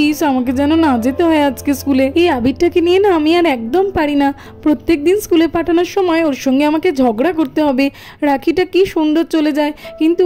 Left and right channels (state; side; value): identical; both; correlation 1.00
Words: আমাকে যেন না যেতে হয় আজকে স্কুলে। এই আবিরটাকে নিয়ে না আমি আর একদম পারি না, প্রত্যেক দিন স্কুলে পাঠানোর সময় ওর সঙ্গে আমাকে ঝগড়া করতে হবে। রাখিটা কি সুন্দর চলে যায়, কিন্তু